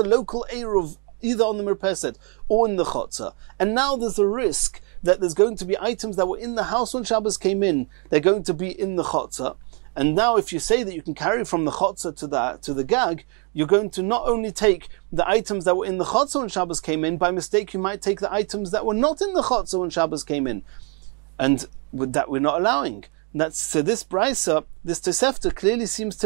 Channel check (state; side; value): quieter; left; 35.6 dB